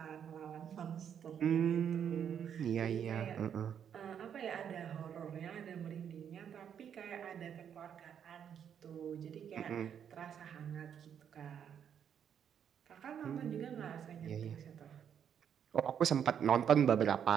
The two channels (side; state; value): left; quieter; 8.5 dB